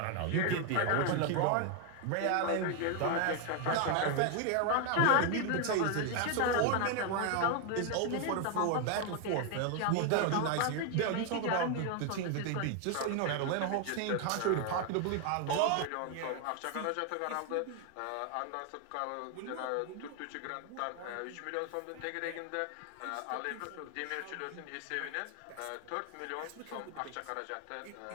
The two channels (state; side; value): different; both; correlation 0.01